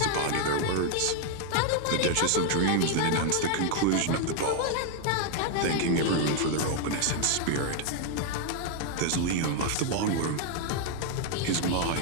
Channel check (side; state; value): both; different; correlation 0.01